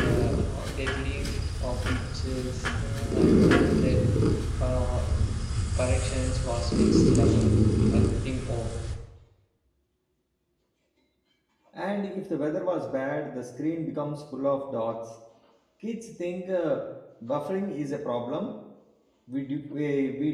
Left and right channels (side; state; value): both; identical; correlation 1.00